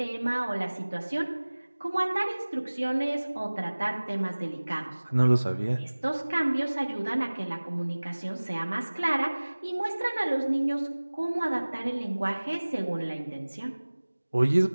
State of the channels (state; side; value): inverted; both; correlation -1.00